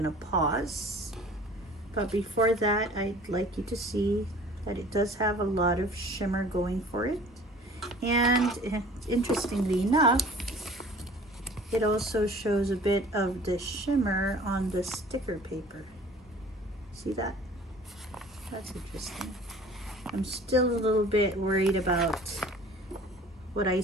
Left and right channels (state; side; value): normal; both; correlation 0.48